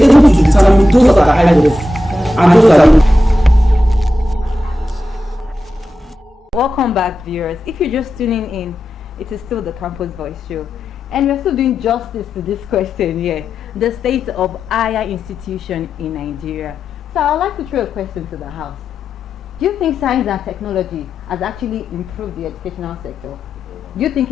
able to determine those that are high level and those that are. Welcome back, viewers. If you're just tuning in, it is still the Campus Voice Show. And we're still doing justice to this question here. The state of higher institution in Nigeria. So I'd like to throw a question to the house. Do you think science and technology has actually improved the educational sector? Do you think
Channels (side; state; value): both; normal; correlation 0.90